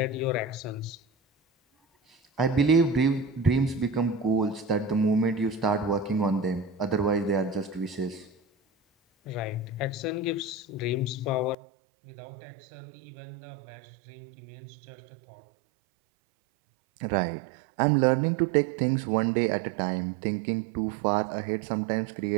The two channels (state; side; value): drops out; left; at 11.6 s